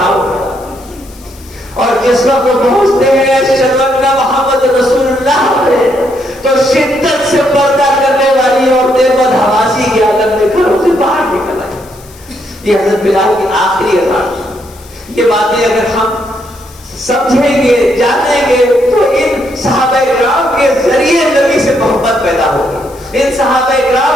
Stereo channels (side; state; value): left; noise; hiss, 24 dB below the sound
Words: ہوا، اور جس وقت پہنچتے ہیں اشہد ان محمد رسول اللہ میں تو شدت سے پردہ کرنے والی عورتیں بدحواسی کے عالم میں گھروں سے باہر نکل آئی۔ یہ حضرت بلال کی آخری اذان، یہ باتیں اگر ہم سمجھیں گے جانیں گے تو ان صحابہ کرام کے ذریعے نبی سے محبت پیدا ہوگی، ان صحابہ